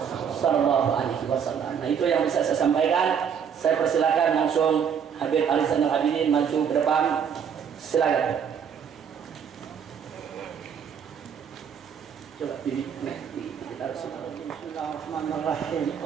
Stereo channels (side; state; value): left; quieter; 7.6 dB